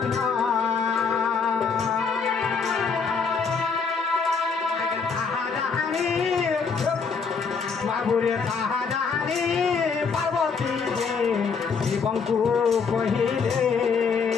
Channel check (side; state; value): right; quieter; 5.4 dB